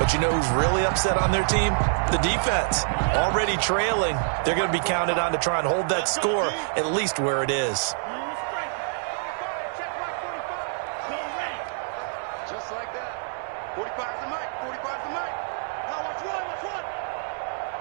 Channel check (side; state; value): left; silent; 61 dB below the other